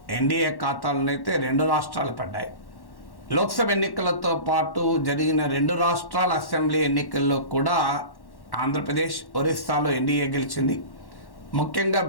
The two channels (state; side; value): late; right; 1.1 ms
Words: ఎన్డీఏ ఖాతాలోనైతే 2 రాష్ట్రాలు పడ్డాయి. లోక్సభ ఎన్నికలతో పాటు జరిగిన 2 రాష్ట్రాల అసెంబ్లీ ఎన్నికల్లో కూడా ఆంధ్రప్రదేశ్, ఒరిస్సాలో ఎన్డీఏ గెలిచింది. ముఖ్యంగా